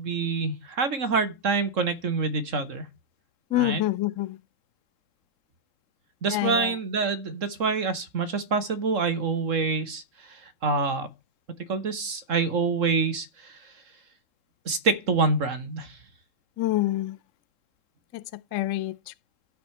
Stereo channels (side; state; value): left; late; 3.7 ms